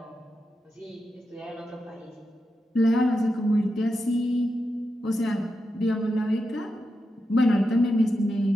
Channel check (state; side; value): normal; both; correlation 0.88